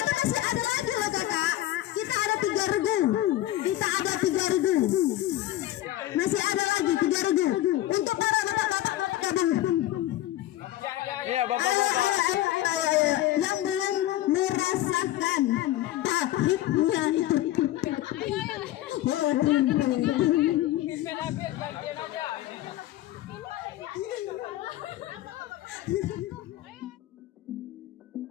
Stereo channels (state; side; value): quieter; right; 14.6 dB